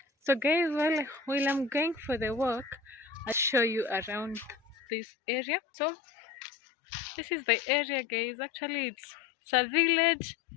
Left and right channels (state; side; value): drops out; right; at 4.8 s